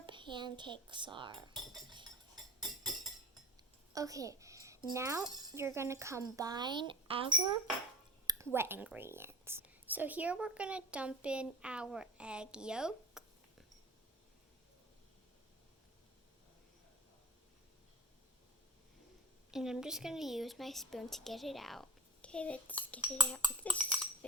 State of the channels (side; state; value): both; normal; correlation 0.36